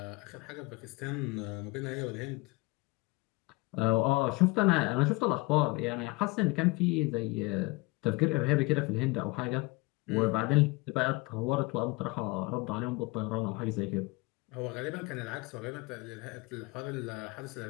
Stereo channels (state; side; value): quieter; right; 24.1 dB